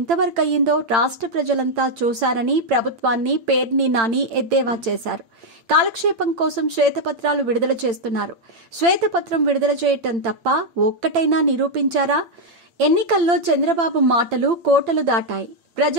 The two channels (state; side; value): late; left; 8.8 ms